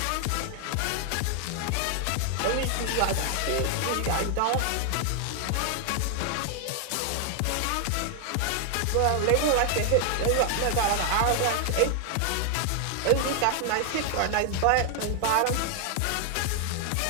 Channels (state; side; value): different; both; correlation 0.00